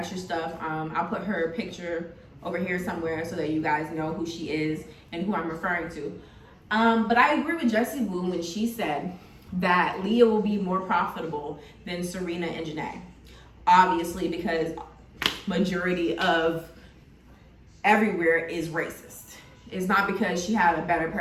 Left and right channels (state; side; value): identical; both; correlation 1.00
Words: stuff. I'll put her picture over here somewhere so that you guys know who she is and who I'm referring to. But I agree with Jessie Woo when she said that Leah will be more profitable than Serena and Janae. Obviously, because majority of everywhere is racist. It's not because she had a better